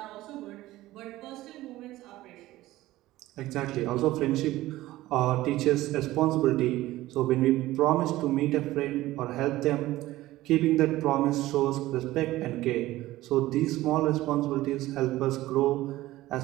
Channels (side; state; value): left; quieter; 16.6 dB